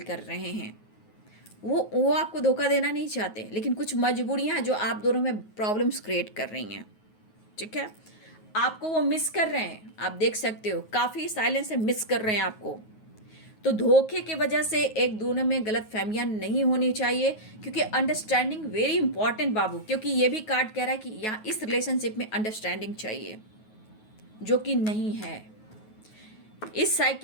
कर रहे हैं। वो आपको धोखा देना नहीं चाहते, लेकिन कुछ मजबूरियाँ हैं जो आप दोनों में प्रॉब्लम्स क्रिएट कर रही हैं। ठीक है, आपको वो मिस कर रहे हैं, आप देख सकते हो, काफ़ी साइलेंस से मिस कर रहे हैं आपको। तो धोखे की वजह से एक दोनों में गलत फहमियाँ नहीं होनी चाहिए, क्योंकि अंडरस्टैंडिंग वेरी इंपॉर्टेंट बाबू। क्योंकि ये भी कार्ड कह रहा है कि यहाँ इस रिलेशनशिप में अंडरस्टैंडिंग चाहिए। जो कि नहीं है। इस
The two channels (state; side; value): late; right; 9.4 ms